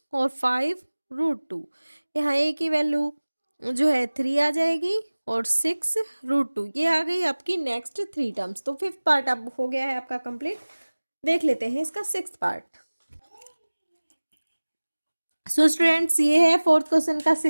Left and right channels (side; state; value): both; inverted; correlation -1.00